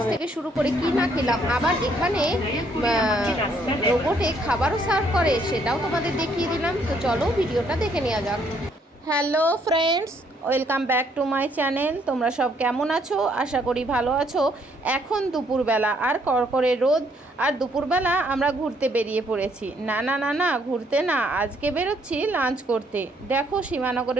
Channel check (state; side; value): normal; both; correlation 0.68